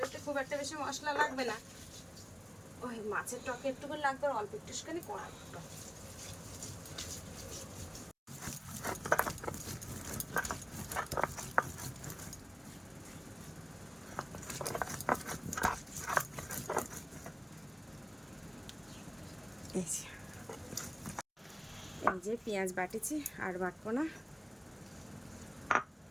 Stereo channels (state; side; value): identical; both; correlation 1.00